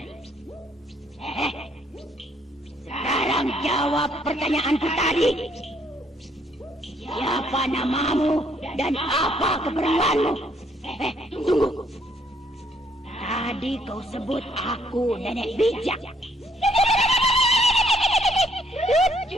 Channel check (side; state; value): both; normal; correlation 0.68